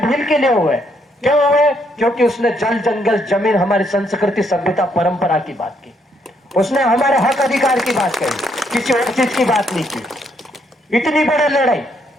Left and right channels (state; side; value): normal; both; correlation 0.73